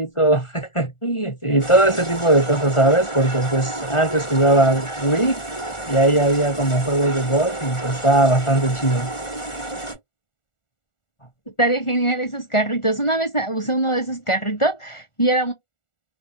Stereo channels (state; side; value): late; right; 1.4 ms